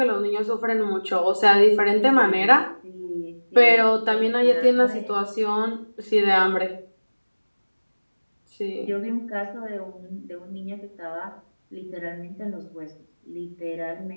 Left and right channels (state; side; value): inverted; both; correlation -1.00